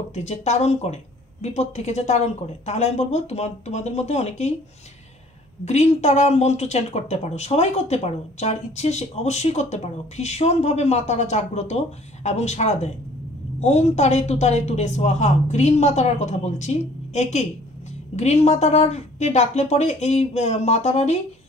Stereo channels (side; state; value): both; normal; correlation 0.55